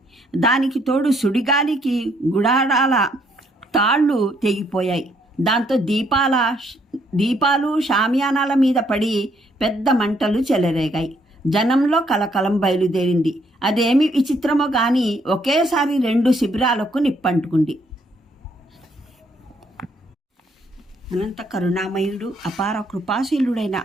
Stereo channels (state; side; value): normal; both; correlation 0.70